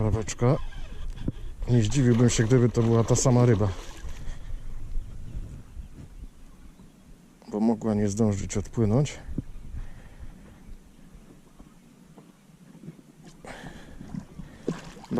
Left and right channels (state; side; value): identical; both; correlation 1.00